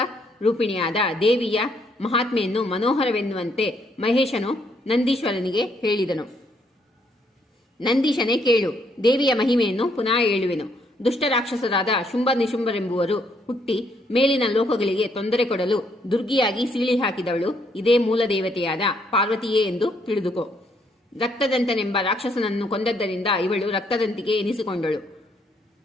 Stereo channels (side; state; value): both; normal; correlation 0.71